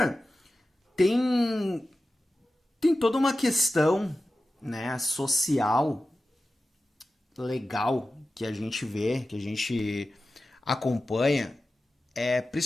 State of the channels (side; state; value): both; normal; correlation 0.94